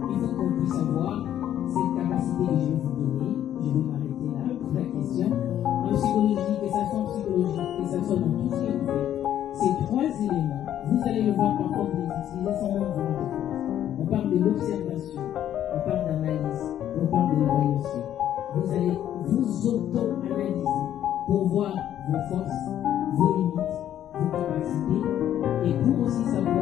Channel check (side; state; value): right; quieter; 11.1 dB